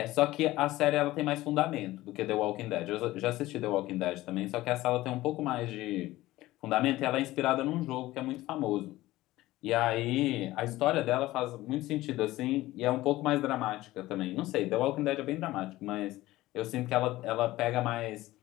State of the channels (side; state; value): right; quieter; 17.1 dB